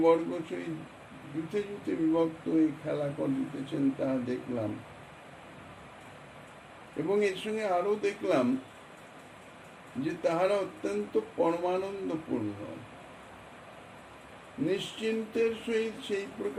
সহিত যুথে যুথে বিভক্ত হয়ে খেলা করিতেছেন তাহা দেখলাম, এবং এর সঙ্গে আরো দেখলাম যে তাহারা অত্যন্ত পরমানন্দপূর্ণ নিশ্চিন্তের সহিত সেই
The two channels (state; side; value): identical; both; correlation 1.00